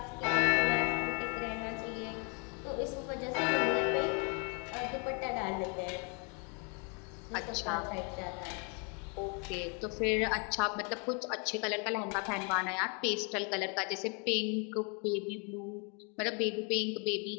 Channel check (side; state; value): right; quieter; 36.2 dB